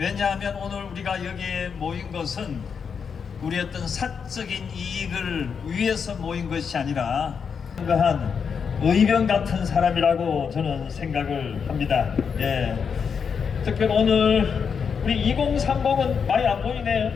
오늘 우리가 여기에 모인 것은 우리 어떤 사적인 이익을 위해서 모인 것이 아니라 한 의병 같은 사람이라고 저는 생각을 합니다. 특별히 오늘 우리 2030은 많이 안 보이네요.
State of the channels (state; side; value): quieter; right; 6.4 dB